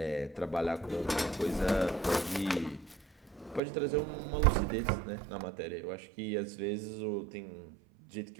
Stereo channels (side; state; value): left; drops out; at 3.6 s